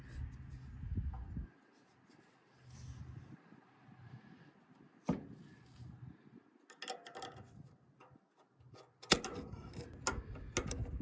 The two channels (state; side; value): identical; both; correlation 1.00